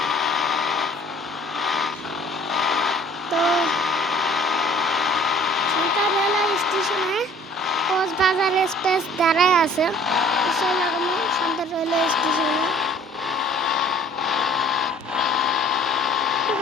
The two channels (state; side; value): normal; both; correlation 0.52